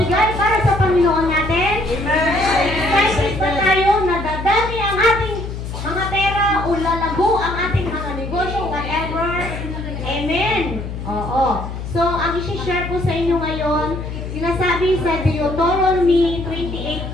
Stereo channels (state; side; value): noise; left; hum, 7 dB below the sound